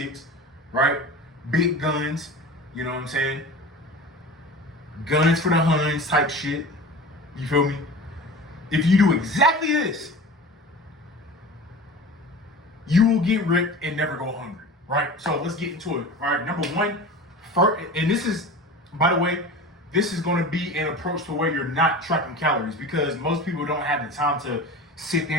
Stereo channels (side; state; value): both; normal; correlation 0.35